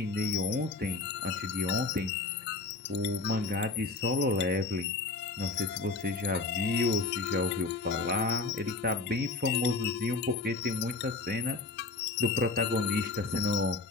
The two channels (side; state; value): right; quieter; 3.5 dB